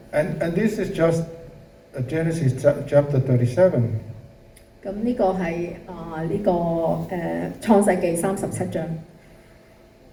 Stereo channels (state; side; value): identical; both; correlation 1.00